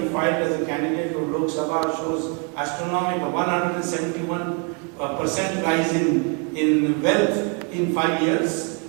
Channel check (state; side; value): quieter; left; 36.6 dB